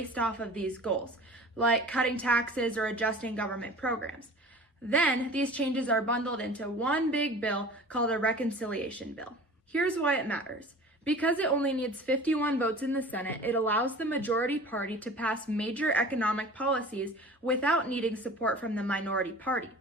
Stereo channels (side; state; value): both; normal; correlation 0.41